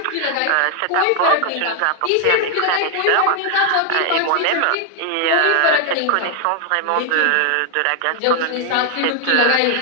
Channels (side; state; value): both; different; correlation 0.00